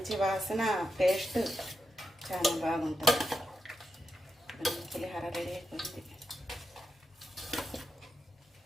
వాసన, టేస్ట్ చాలా బాగుంటుంది. పులిహోర రెడీ అయిపోయింది.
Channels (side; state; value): both; normal; correlation 0.86